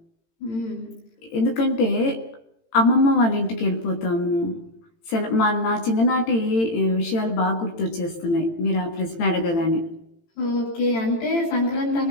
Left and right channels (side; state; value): right; late; 18 ms